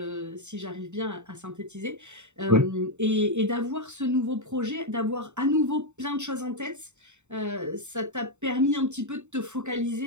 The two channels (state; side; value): late; left; 0.84 ms